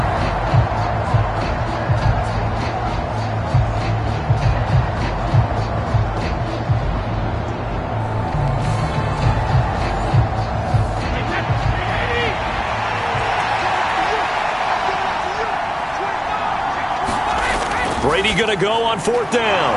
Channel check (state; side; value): identical; both; correlation 1.00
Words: Brady going to go on 4th down.